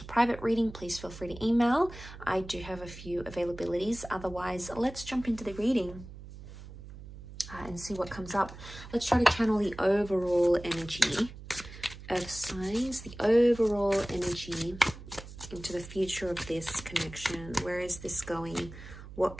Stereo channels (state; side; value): noise; right; hum, 15 dB below the sound